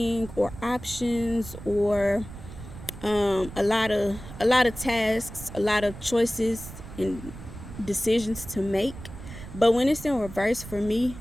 or options, or a lot of tasks, a lot of choices and decisions to make. But when it's in reverse, for me,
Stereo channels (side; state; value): right; noise; rumble, 13 dB below the sound